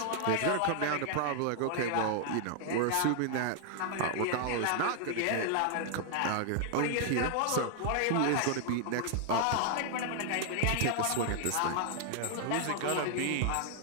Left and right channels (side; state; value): both; different; correlation 0.00